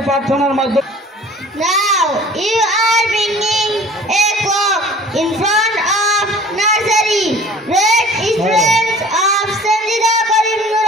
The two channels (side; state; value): both; normal; correlation 0.47